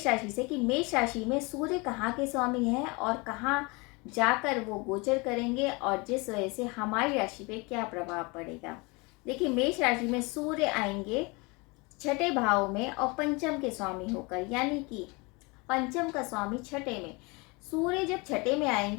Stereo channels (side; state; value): right; quieter; 27.4 dB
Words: राशि से कि मेष राशि में सूर्य कहाँ के स्वामी हैं और कहाँ जाकर वो गोचर करेंगे और जिस वजह से हमारी राशि पे क्या प्रभाव पड़ेगा। देखिए, मेष राशि में सूर्य आएंगे छठे भाव में और पंचम के स्वामी होकर, यानी कि पंचम का स्वामी छठे में। सूर्य जब छठे में